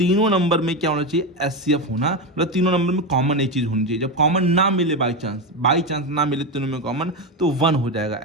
नंबर में क्या होना चाहिए, HCF होना, मतलब तीनों नंबर में कॉमन एक चीज होनी चाहिए। जब कॉमन ना मिले, बाई चांस ना मिले तीनों में कॉमन, तो 1 हो जाएगा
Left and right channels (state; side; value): normal; both; correlation 0.13